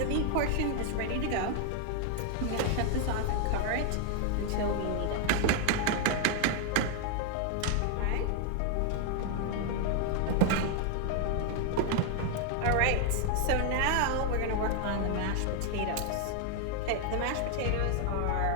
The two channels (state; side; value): different; both; correlation 0.00